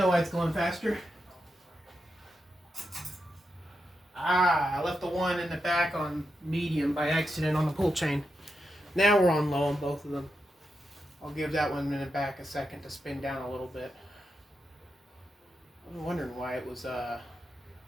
why it's going faster. I left the one in the back on medium by accident on the pull chain. Now we're on low on both of them. I'll give that one in the back a second to spin down a little bit. I'm wondering why it was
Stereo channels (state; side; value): normal; both; correlation 0.86